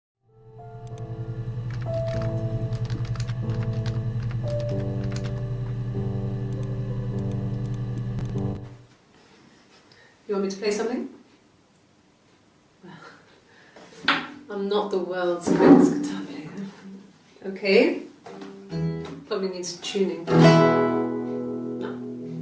You want me to play something? I'm not the world's greatest guitar player. Okay. Probably needs tuning. No,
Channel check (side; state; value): both; identical; correlation 1.00